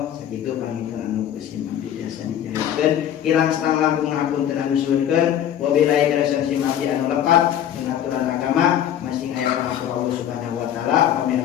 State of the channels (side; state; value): right; quieter; 10.4 dB